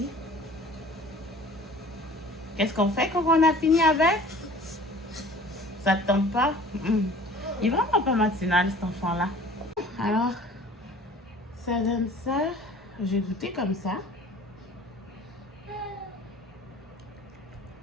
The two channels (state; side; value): normal; both; correlation 0.47